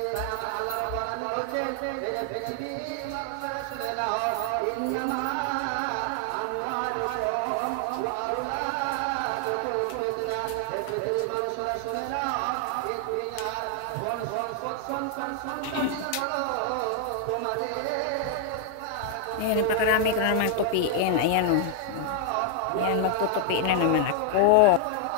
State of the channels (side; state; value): both; different; correlation 0.00